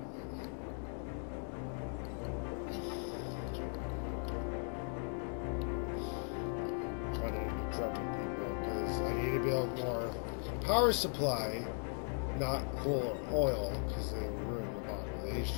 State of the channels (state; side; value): silent; right; 52 dB below the other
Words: Running into trouble, people, because I need to build more power supply, not coal or oil, because they ruin the